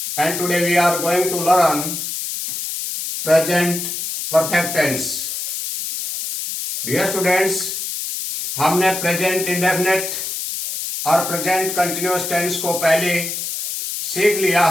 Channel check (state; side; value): noise; left; hiss, 4 dB below the sound